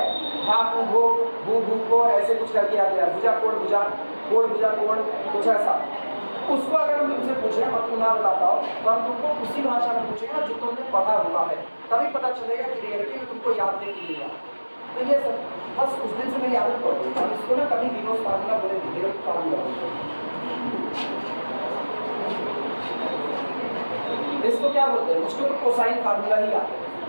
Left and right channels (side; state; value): both; inverted; correlation -1.00